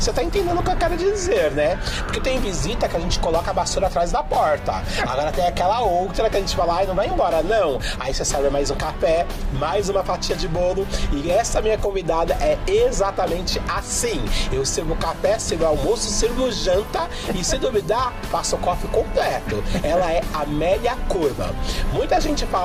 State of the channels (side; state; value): both; identical; correlation 1.00